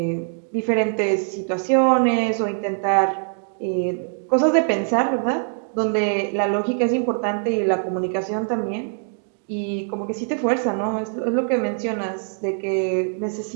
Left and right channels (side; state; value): left; silent; digital silence